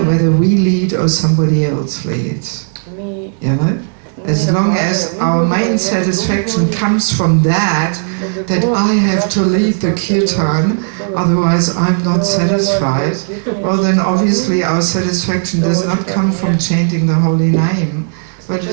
whether we lead or somebody else leads. You know? As long as our main satisfaction comes from that I have to lead the kirtan, otherwise I'm not satisfied, well then obviously our satisfaction does not come from chanting the holy name, but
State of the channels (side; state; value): left; silent; digital silence